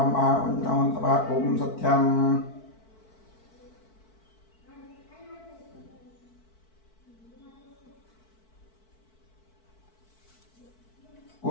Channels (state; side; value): late; right; 4.5 ms